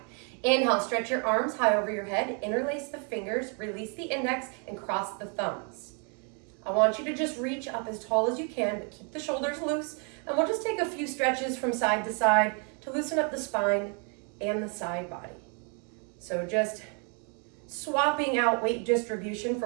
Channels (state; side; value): quieter; left; 38.3 dB